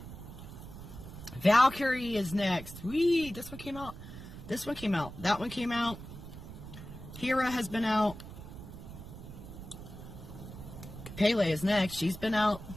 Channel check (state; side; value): noise; right; rumble, 12 dB below the sound